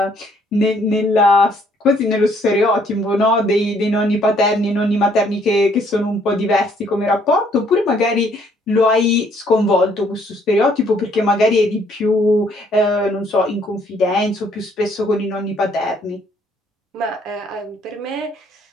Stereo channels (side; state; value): both; normal; correlation 0.65